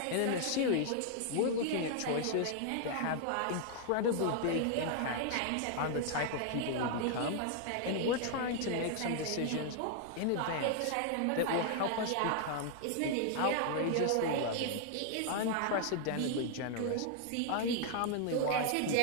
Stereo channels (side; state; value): both; different; correlation 0.00